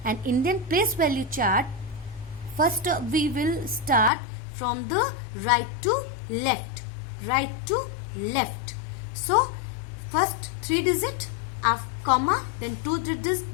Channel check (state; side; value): drops out; right; at 4.1 s